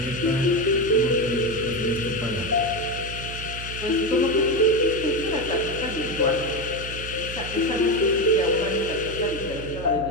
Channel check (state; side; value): noise; right; hum, 10 dB below the sound